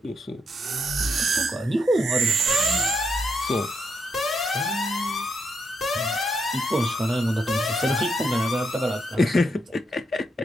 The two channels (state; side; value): normal; both; correlation 0.81